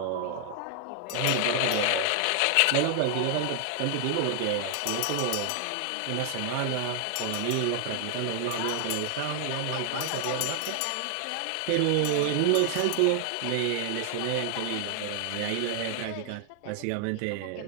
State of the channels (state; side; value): different; both; correlation 0.00